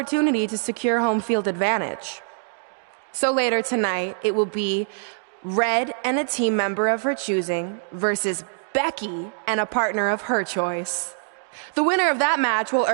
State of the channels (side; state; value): left; silent; digital silence